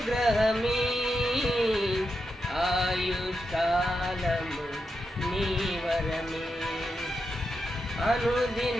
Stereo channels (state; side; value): normal; both; correlation 0.86